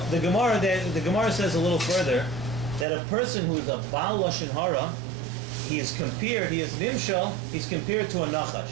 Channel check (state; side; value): drops out; left; at 2.9 s